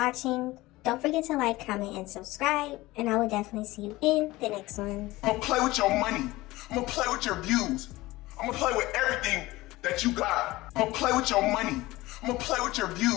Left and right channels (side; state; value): right; quieter; 19.2 dB